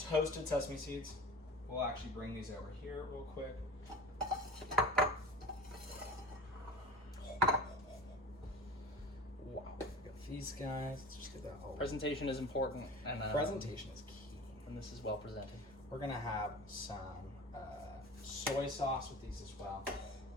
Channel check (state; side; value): normal; both; correlation 0.36